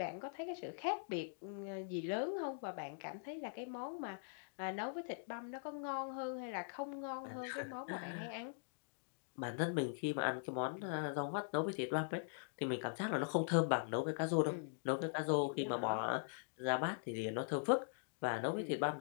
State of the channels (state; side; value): silent; right; digital silence